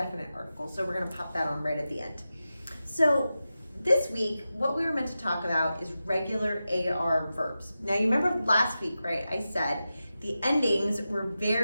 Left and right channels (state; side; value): inverted; both; correlation -0.93